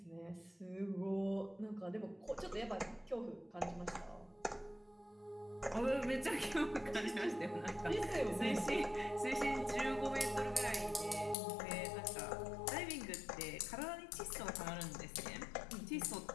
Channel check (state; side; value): drops out; right; at 11.4 s